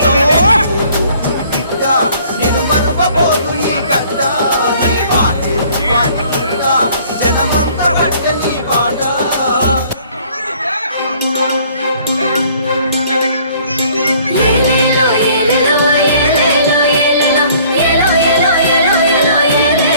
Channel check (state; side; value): inverted; both; correlation -0.57